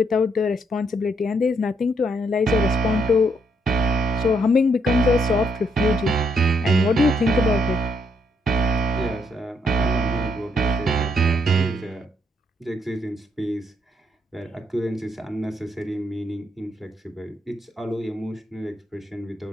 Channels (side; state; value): both; normal; correlation 0.74